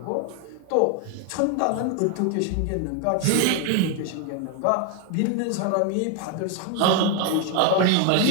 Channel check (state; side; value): different; both; correlation 0.01